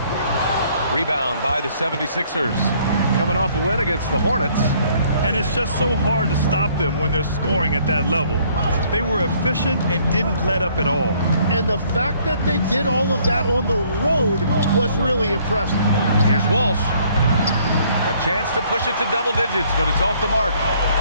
Rebound by the 76ers. Coming off a win against the Hornets. And it's just so hard to stop them when they're scoring at that level. They were efficient and didn't let up at all. And the fact that they did all of that on the road was really impressive. Here's Walsh. A chance to push it to double digits, but it's off the mark.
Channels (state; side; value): inverted; both; correlation -0.62